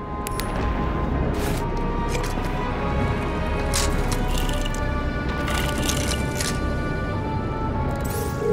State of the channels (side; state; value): both; identical; correlation 1.00